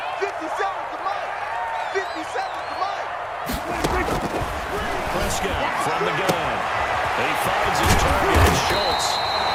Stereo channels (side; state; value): both; identical; correlation 1.00